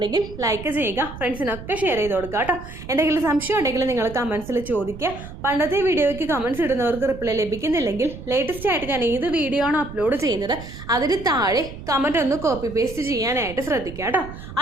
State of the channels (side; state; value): right; noise; rumble, 13 dB below the sound